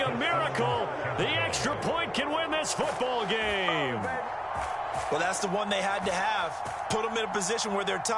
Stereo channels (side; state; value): both; identical; correlation 1.00